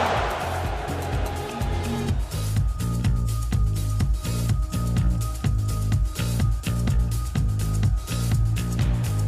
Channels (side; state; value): both; identical; correlation 1.00